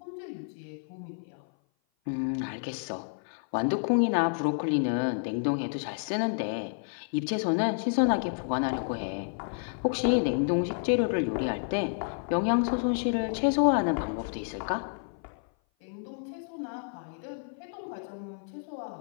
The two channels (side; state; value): right; silent; 56 dB below the other